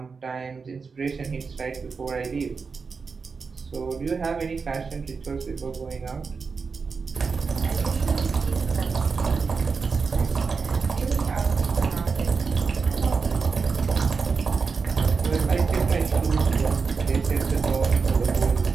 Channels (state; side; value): quieter; left; 5.0 dB